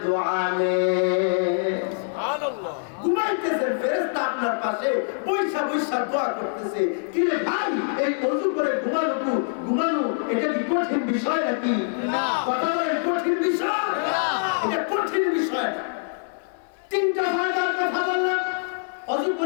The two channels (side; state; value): right; silent; 58 dB below the other